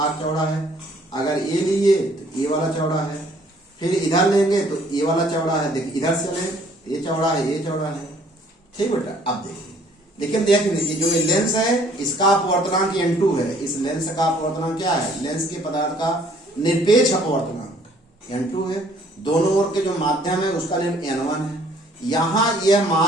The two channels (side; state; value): both; normal; correlation 0.60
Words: चौड़ा है। अगर ये लिए तो ये वाला चौड़ा है, फिर इधर लेंगे तो ये वाला चौड़ा है। देखिए इधर से लें तो ये चौड़ा है, ये चौड़ा है। ठीक बेटा, अब देखिए, लेकिन देख लीजिए जो ये लेंस है इसका अपवर्तनांक n2 है। इस लेंस का अपवर्तनांक क्या है, लेंस के पदार्थ का निरपेक्ष अपवर्तनांक n2 है। दोनों ओर के जो माध्यम है उसका n1 है। यहाँ यह